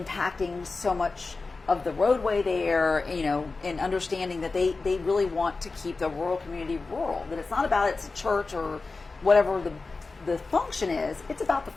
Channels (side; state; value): right; quieter; 3.9 dB